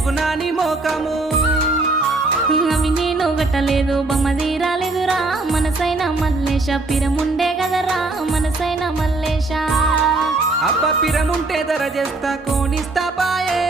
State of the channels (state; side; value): quieter; left; 3.2 dB